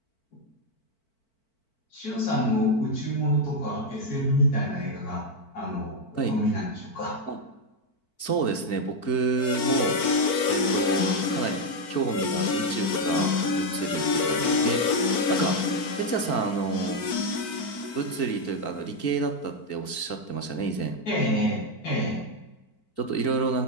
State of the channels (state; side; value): late; right; 4.5 ms